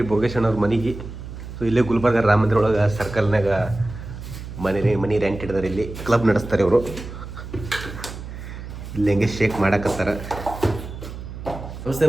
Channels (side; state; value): right; noise; hum, 11 dB below the sound